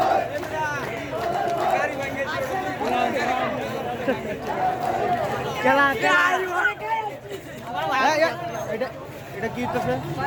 এটা কি হচ্ছে?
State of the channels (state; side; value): identical; both; correlation 1.00